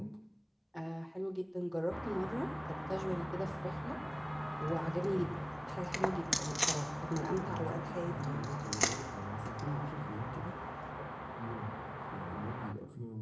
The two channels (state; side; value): identical; both; correlation 1.00